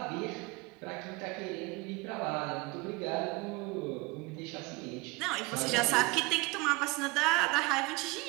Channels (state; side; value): quieter; left; 24.4 dB